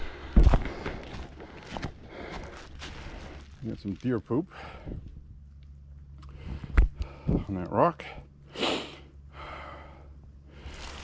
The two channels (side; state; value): both; identical; correlation 1.00